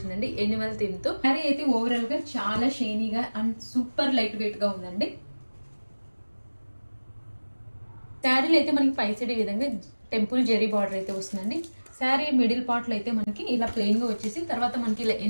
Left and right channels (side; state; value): both; inverted; correlation -1.00